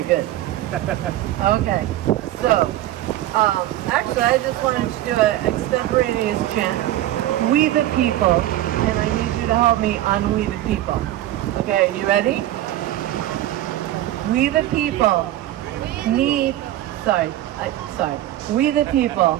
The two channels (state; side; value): quieter; left; 14.1 dB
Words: good. Okay, so actually I just wanted to do an extemporaneous chant. We the people, and I need you to help me on We the People. Okay, you ready? We the people need, we the